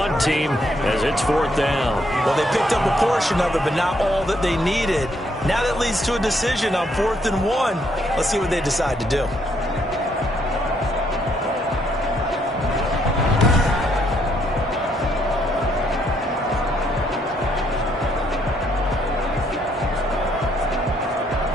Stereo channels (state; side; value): normal; both; correlation 0.72